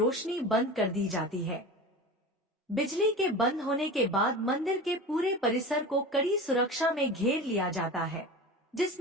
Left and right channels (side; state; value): both; normal; correlation 0.31